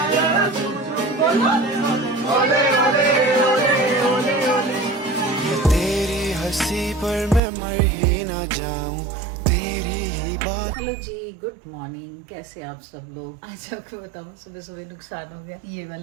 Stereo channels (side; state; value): left; drops out; at 7.4 s